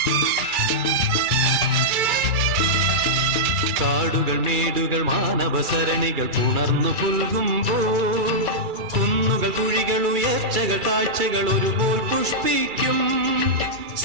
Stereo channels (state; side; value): late; left; 2.3 ms